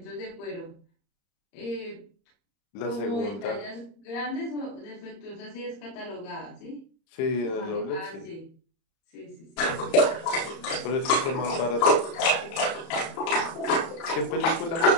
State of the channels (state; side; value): late; right; 30 ms